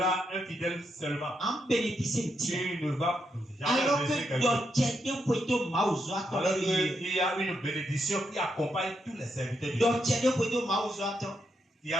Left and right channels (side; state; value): both; normal; correlation 0.81